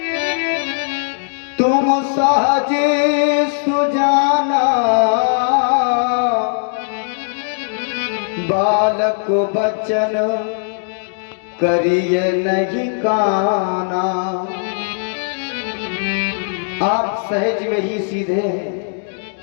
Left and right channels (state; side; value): silent; right; digital silence